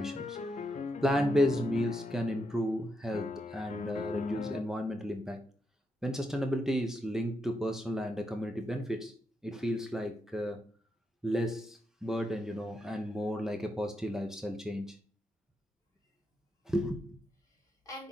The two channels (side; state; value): both; normal; correlation 0.82